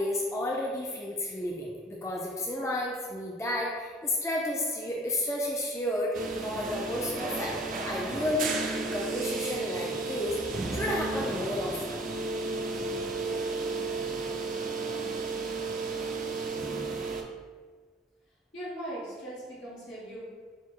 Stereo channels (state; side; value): normal; both; correlation 0.50